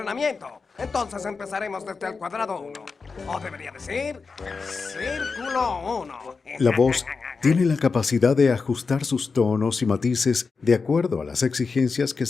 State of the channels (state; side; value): quieter; right; 4.7 dB